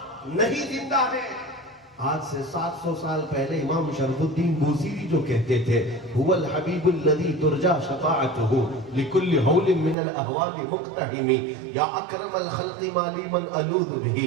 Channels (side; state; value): left; drops out; at 10.0 s